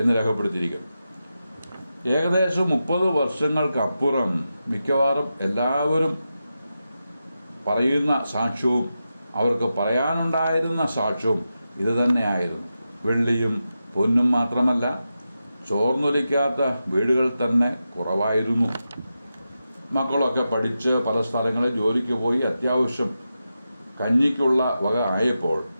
രേഖപ്പെടുത്തിയിരിക്കുന്നു. ഏകദേശം 30 വർഷങ്ങൾക്കപ്പുറം മിക്കവാറും എല്ലാവരും പറയുന്ന സാക്ഷ്യവും അവർക്ക് പറയാനുണ്ടായിരുന്ന സാക്ഷ്യവും ഇത് തന്നെയായിരുന്നു. വെള്ളിയും പൊന്നും മാത്രമല്ല, ചോർന്നൊലിക്കാത്ത വീടുകൾ തന്നെ കുറവായിരുന്നു. മക്കളൊക്കെ പഠിച്ച് പല സ്ഥലങ്ങളിൽ ജോലിക്ക് പോയി അത്യാവശ്യം കഞ്ഞിക്കുള്ള വക ആയപ്പോൾ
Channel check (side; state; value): both; inverted; correlation -0.90